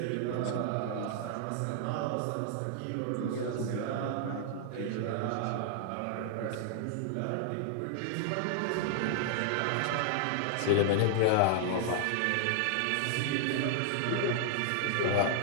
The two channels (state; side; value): different; both; correlation -0.01